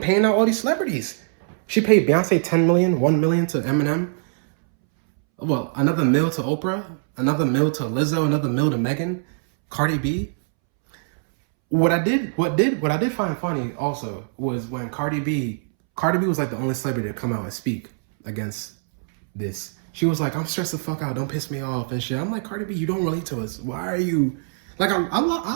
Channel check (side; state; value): left; silent; 64 dB below the other